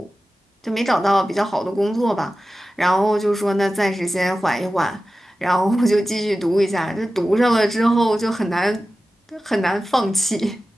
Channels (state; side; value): normal; both; correlation 0.95